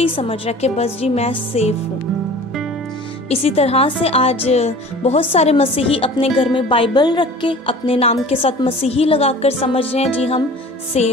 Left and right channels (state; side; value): normal; both; correlation 0.43